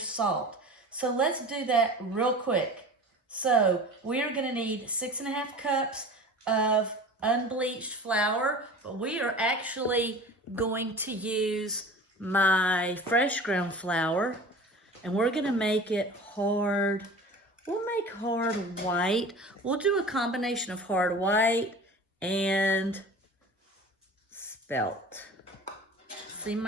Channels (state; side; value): normal; both; correlation 0.39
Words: So let's do that real quick. So we are gonna need 6½ cups of unbleached flour, but we are actually going to use my fresh ground flour, and we're gonna make it hard. We'll make hard white. We'll do a combination of hard white and spelt. See